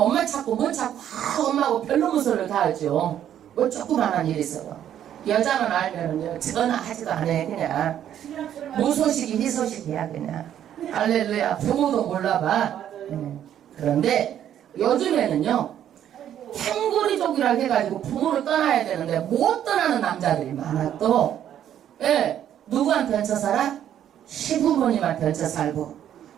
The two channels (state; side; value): quieter; left; 10.4 dB